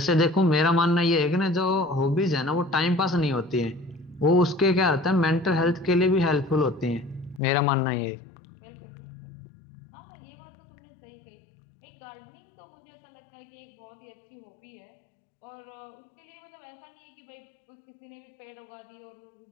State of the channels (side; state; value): right; drops out; at 7.4 s